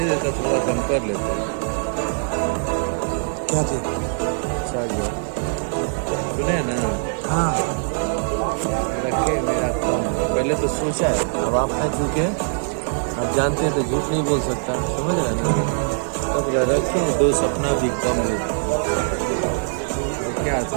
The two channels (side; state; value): left; silent; digital silence